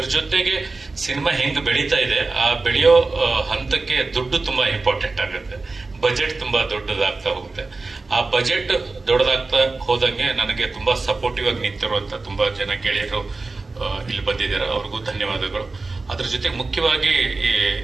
ಜೊತೆಗೆ ಸಿನಿಮಾ ಹೆಂಗ್ ಬೆಳೀತಾ ಇದೆ, ಆ ಬೆಳೆಯೋ ಹಂತಕ್ಕೆ ದುಡ್ಡು ತುಂಬಾ ಇಂಪಾರ್ಟೆಂಟ್ ಆಗುತ್ತೆ. ಬಜೆಟ್ ತುಂಬಾ ದೊಡ್ಡದಾಗ್ತಾ ಹೋಗುತ್ತೆ. ಆ ಬಜೆಟ್ ದೊಡ್ಡದಾಗ್ತಾ ಹೋದಂಗೆ ನನಗೆ ತುಂಬಾ ಸಪೋರ್ಟಿವ್ ಆಗಿ ನಿಂತಿರುವಂತ ತುಂಬಾ ಜನ ಗೆಳೆಯರು ಇಲ್ಲಿ ಬಂದಿದ್ದಾರೆ, ಅವ್ರಿಗೂ ಧನ್ಯವಾದಗಳು. ಅದ್ರ ಜೊತೆ ಮುಖ್ಯವಾಗಿ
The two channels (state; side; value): quieter; left; 3.6 dB